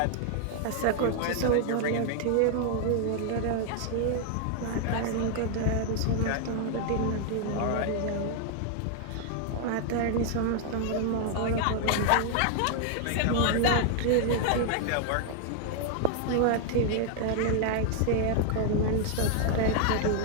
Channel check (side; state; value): both; different; correlation 0.00